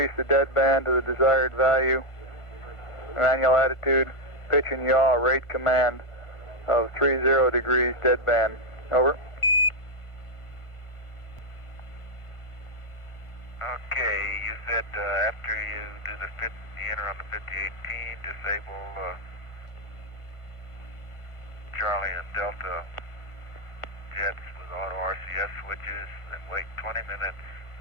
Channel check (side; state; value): right; late; 1.4 ms